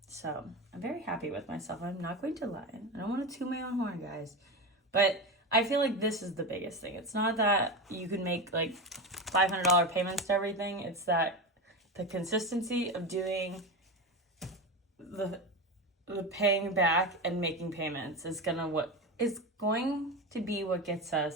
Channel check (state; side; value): normal; both; correlation 0.20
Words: So I'm very happy with myself. I'm not going to lie. I don't want to toot my own horn, guys. But I feel like this is the biggest thing. It's not that you can make like $500 payments to everything. It's that the consistency of doing the paying back and making payments is going to be what gets